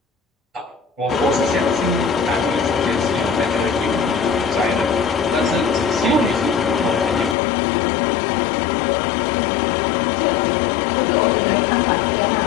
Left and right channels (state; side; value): drops out; right; at 7.4 s